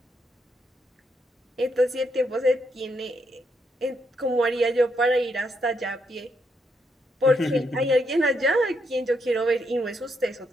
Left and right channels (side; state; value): both; normal; correlation 0.78